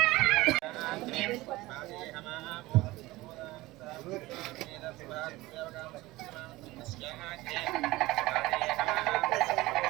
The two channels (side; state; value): left; quieter; 19.4 dB